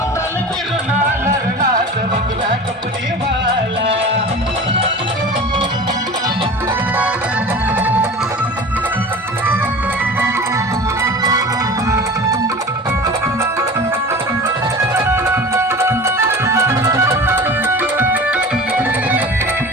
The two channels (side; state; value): both; normal; correlation 0.36